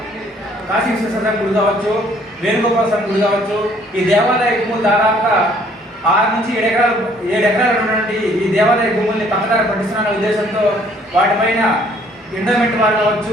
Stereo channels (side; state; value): both; normal; correlation 0.61